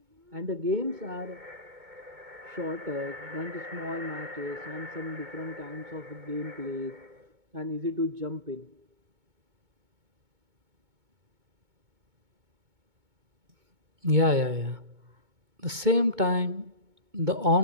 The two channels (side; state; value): left; late; 2.2 ms